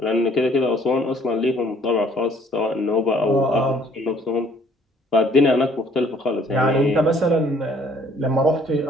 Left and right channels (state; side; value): normal; both; correlation 0.60